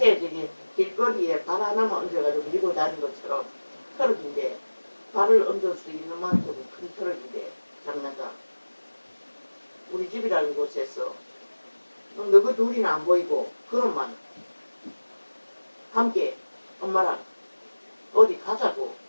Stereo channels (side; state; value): both; inverted; correlation -1.00